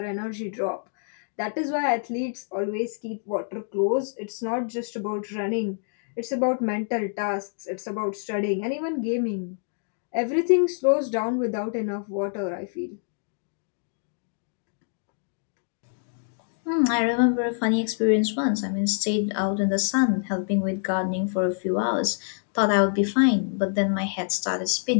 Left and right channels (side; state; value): right; silent; digital silence